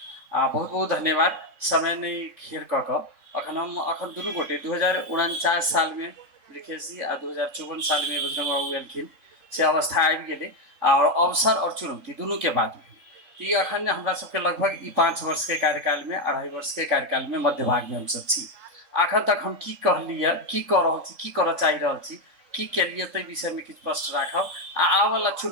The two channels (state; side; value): late; left; 3.6 ms